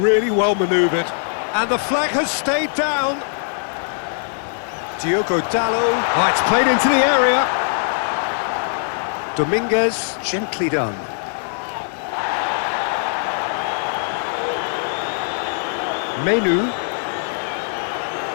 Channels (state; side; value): silent; right; digital silence